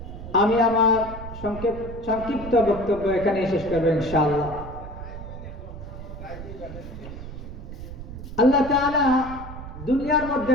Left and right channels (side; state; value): right; noise; rumble, 11 dB below the sound